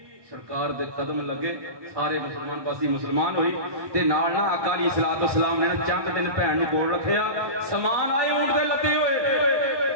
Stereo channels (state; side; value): late; left; 1.2 ms